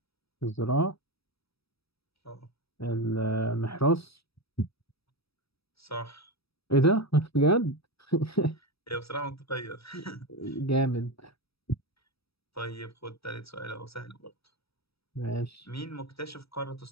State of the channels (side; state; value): right; late; 0.77 ms